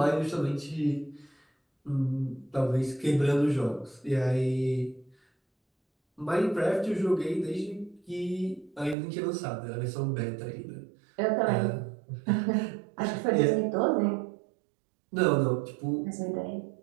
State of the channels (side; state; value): left; drops out; at 9.0 s